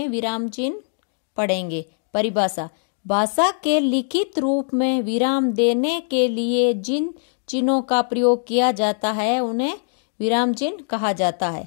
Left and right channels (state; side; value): silent; right; 64 dB below the other